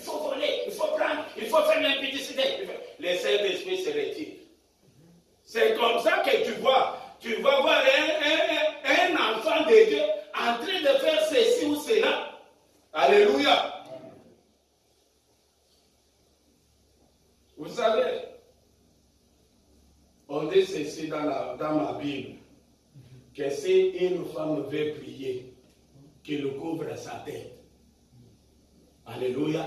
faut voler, il faut prendre, il faut faire l'impudicité. Le Saint-Esprit se retire. C'est comme ça que tu vas voir un enfant de Dieu en train de faire ceci ou cela. Alléluia. Vous savez, on dit ceci dans ma Bible, que si une femme veut prier, qu'il couvre sa tête. Alléluia.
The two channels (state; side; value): identical; both; correlation 1.00